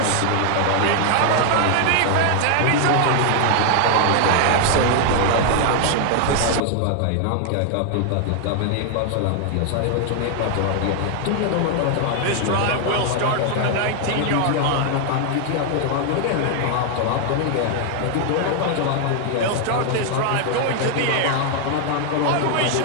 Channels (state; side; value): different; both; correlation 0.00